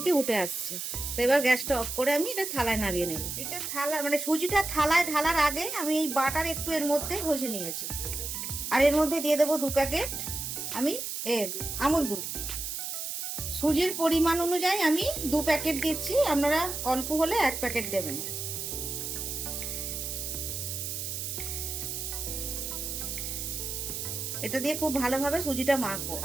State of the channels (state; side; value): noise; right; hiss, 4 dB below the sound